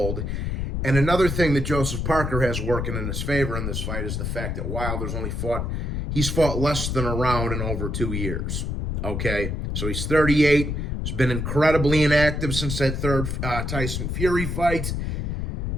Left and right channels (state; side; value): noise; left; rumble, 2 dB below the sound